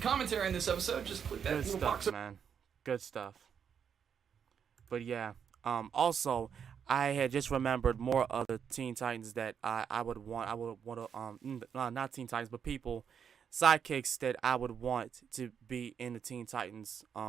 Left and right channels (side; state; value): left; quieter; 7.5 dB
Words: on this episode, just click that Good little stuff, box. man. Good stuff. But yeah, also, I had just remembered more of the Teen Titans that I would want to not Teen Titans, but people, sidekicks that I would want to be in the Teen Titans,